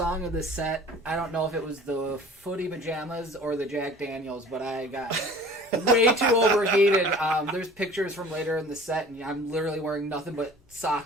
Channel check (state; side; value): normal; both; correlation 0.45